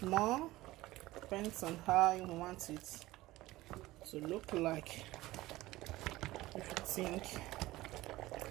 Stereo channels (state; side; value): quieter; left; 17.9 dB